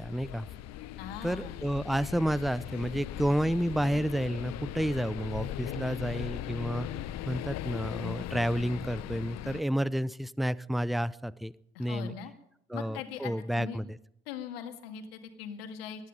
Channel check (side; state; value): both; normal; correlation 0.89